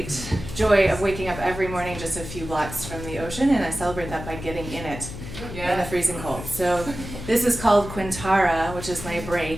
joy of waking up every morning just a few blocks from the ocean, and I celebrate that by getting in it in the freezing cold. So this is called Quintara, which is my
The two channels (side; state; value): left; noise; hum, 10 dB below the sound